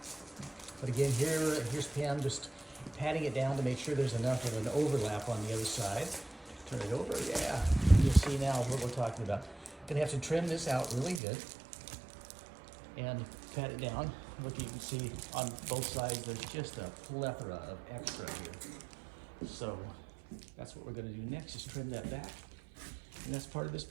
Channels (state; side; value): drops out; left; at 11.2 s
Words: But again, here's Pam just patting it down to make sure there's enough of an overlap on the other side. Turn it over, yeah. You'll see now what we're talking about. Gonna have to trim this out really good and pat it down. Look, you can see on both sides, there's just a plethora of extra here. So that's what we're gonna do next, is trim that back. And that's part of this